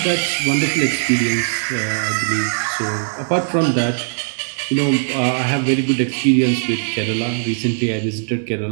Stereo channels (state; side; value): silent; left; 66 dB below the other